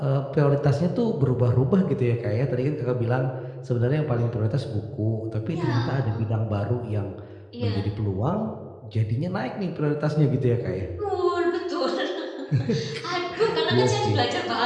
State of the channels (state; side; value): identical; both; correlation 1.00